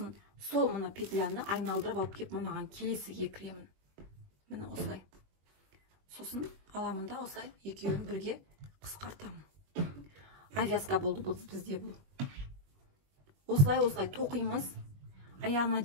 сол мына петляны айналдырып алып кеп, мынаған келесіге кіремін. Міне осылай. Сосын аламын да осылай екеуін бірге қысқартамын. Авязка болды бұл бізде бұл. Осылай тоқимыз. Аяғына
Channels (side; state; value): left; late; 21 ms